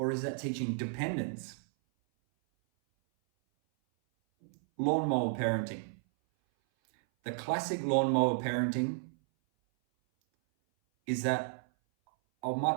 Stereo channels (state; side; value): silent; left; 56 dB below the other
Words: is that teaching dependence? Lawnmower parenting. The classic lawnmower parenting is that